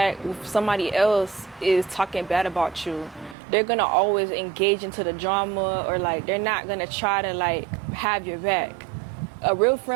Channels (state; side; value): drops out; left; at 3.4 s